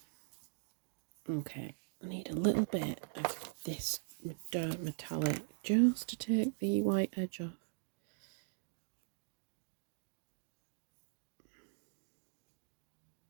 Okay, I need a little bit of this dark metallic just to take the white edge off.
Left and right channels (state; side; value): silent; left; digital silence